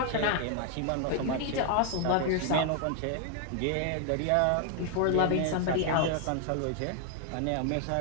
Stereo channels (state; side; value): different; both; correlation 0.00